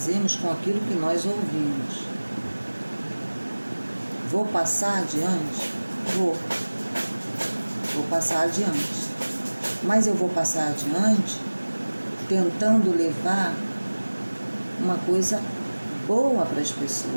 com aquilo que nós ouvimos. Vou passar adiante? Vou passar adiante. Mas eu vou passar adiante tentando levar uma coisa boa para as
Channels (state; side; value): inverted; both; correlation -1.00